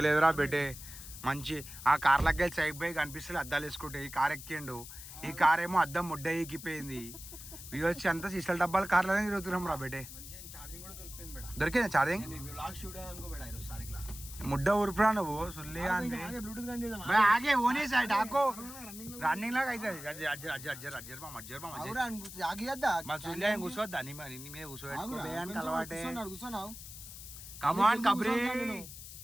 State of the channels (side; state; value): left; noise; hiss, 13 dB below the sound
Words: బేటే మంచి ఆ కార్లకి వెళ్ళి సైడ్ బై కనిపిస్తుంది అద్దాలు వేసుకుంటే ఈ కార్ ఎక్కిండు ఈ కార్ ఏమో అద్దం ముడ్డ ఎక్కిపోయింది ఇది వచ్చి అంతా సీసల డబ్బాలు కార్లనే తిరుగుతున్నాం రా బేటే దొరికిందా ఛార్జింగ్ ముడ్డ ఊరుపురా నువ్వు సుల్లి ఆగే ఓనే సైడ్ ఆకో రన్నింగ్ లాగా అవుతుంది మా సుల్లి కూర్చోద్దా నీ మీద కూర్చోబెట్టుకోవడానికి అలవాటే కమాన్ కబ్రీ